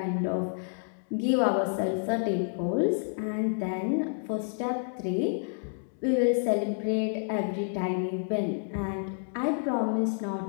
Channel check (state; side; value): silent; right; digital silence